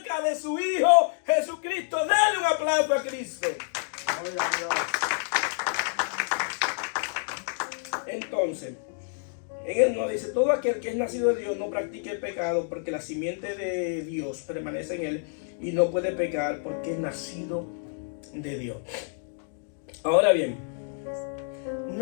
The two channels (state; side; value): silent; right; digital silence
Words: de su Hijo Jesucristo. Dale un aplauso a Cristo. Entonces, en Él nos dice: todo aquel que es nacido de Dios no practique el pecado, porque la simiente de Dios permanece en él y no puede pecar porque es nacido de Dios. Ahora bien,